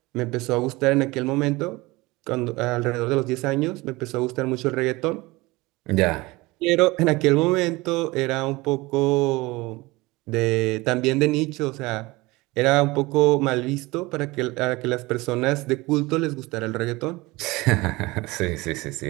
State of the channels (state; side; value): quieter; left; 21.9 dB